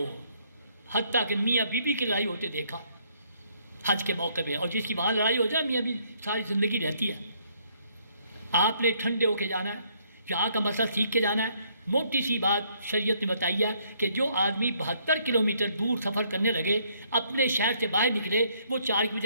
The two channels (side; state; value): both; inverted; correlation -0.68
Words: حتیٰ کہ میاں بیوی کی لڑائی ہوتے دیکھا حج کے موقع پہ، اور جس کی وہاں لڑائی ہو جائے میاں بھی ساری زندگی رہتی ہے۔ آپ نے ٹھنڈے ہو کے جانا ہے، یہاں کا مسئلہ سیکھ کے جانا ہے۔ موٹی سی بات شریعت نے بتائی ہے کہ جو آدمی 72 کلومیٹر دور سفر کرنے لگے، اپنے شہر سے باہر نکلے، وہ 4 کی